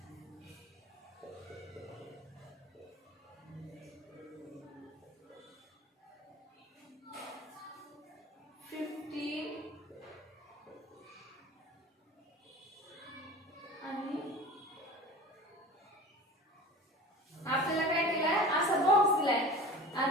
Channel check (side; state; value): both; normal; correlation 0.36